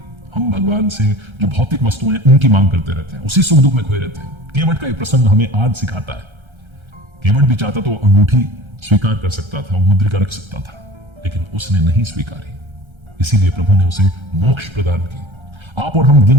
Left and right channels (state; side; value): late; left; 1.3 ms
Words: हम भगवान से जो भौतिक वस्तुएं हैं उनकी मांग करते रहते हैं, उसी सुख दुख में खोए रहते हैं। केवट का एक प्रसंग हमें आज सिखाता है। केवट भी चाहता तो अंगूठी स्वीकार कर सकता था, वो मुद्रिका रख सकता था, लेकिन उसने नहीं स्वीकारी, इसीलिए प्रभु ने उसे मोक्ष प्रदान की। आप और हम